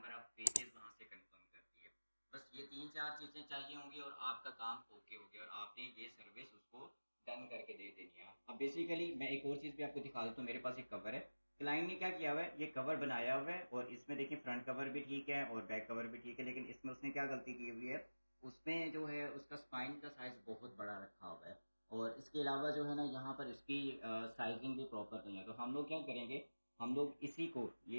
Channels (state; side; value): inverted; both; correlation -1.00